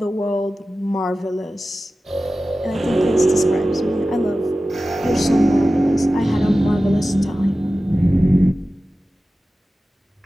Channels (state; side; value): normal; both; correlation 0.95